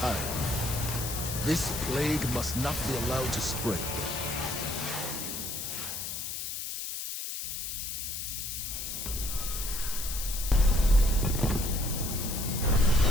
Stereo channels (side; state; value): left; noise; hiss, 5 dB below the sound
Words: This plague must not be allowed to spread.